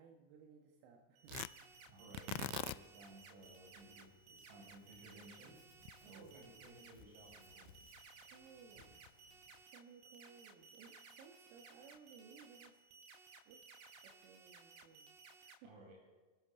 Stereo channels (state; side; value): late; left; 30 ms